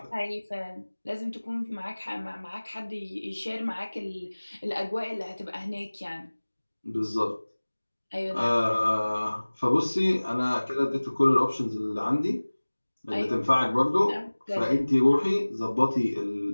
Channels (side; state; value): both; inverted; correlation -1.00